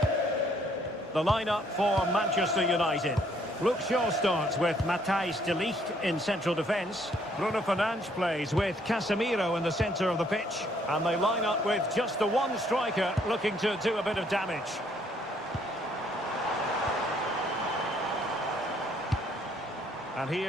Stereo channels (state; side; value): normal; both; correlation 0.66